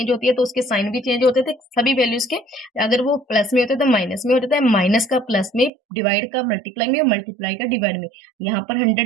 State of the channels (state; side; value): drops out; left; at 5.7 s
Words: होती है तो उसके साइन भी चेंज होते थे सभी वैल्यूज के। अगर वो प्लस में होते तो माइनस में होता है, माइनस का प्लस में, डिवाइड का मल्टीप्लाई में, मल्टीप्लाई का डिवाइड में। यहाँ पर